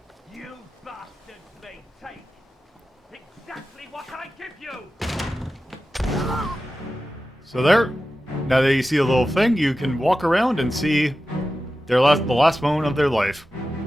You bastards may take exactly what I give you! So there, now that you see a little thing, you can walk around and see the last moment of their life.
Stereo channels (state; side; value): normal; both; correlation 0.93